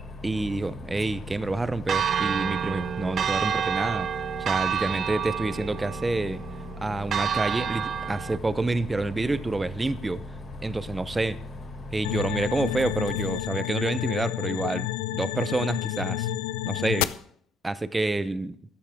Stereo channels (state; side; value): normal; both; correlation 0.76